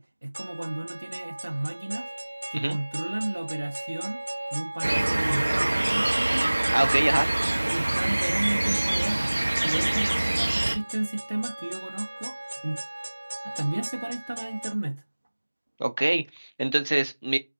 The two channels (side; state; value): both; inverted; correlation -1.00